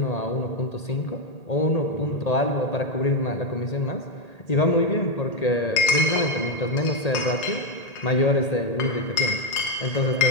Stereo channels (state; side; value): late; right; 1.8 ms